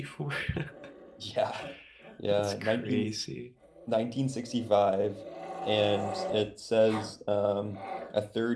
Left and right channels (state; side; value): identical; both; correlation 1.00